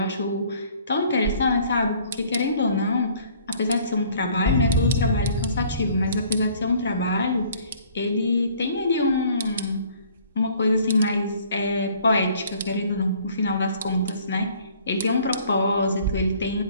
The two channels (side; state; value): both; inverted; correlation -0.56